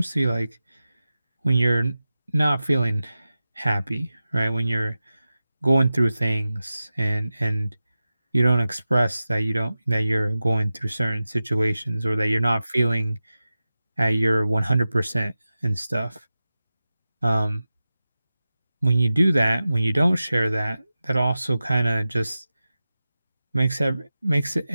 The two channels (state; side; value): inverted; both; correlation -0.94